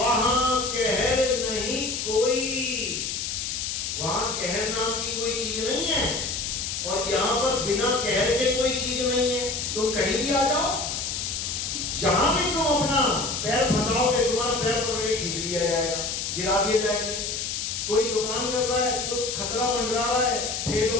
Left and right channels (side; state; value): left; noise; hiss, 3 dB below the sound